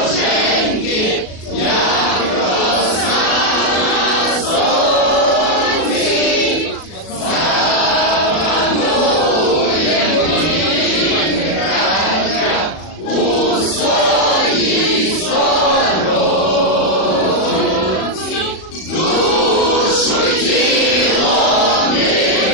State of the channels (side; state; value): right; late; 37 ms